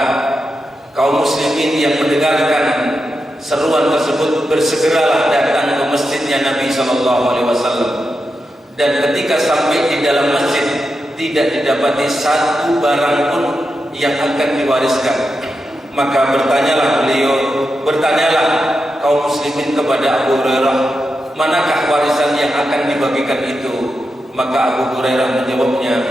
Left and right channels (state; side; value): normal; both; correlation 0.88